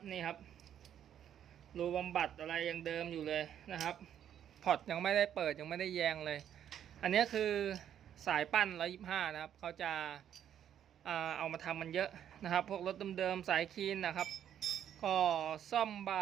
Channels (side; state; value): left; quieter; 9.9 dB